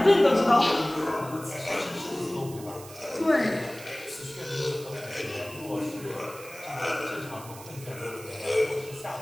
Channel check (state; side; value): noise; right; hiss, 17 dB below the sound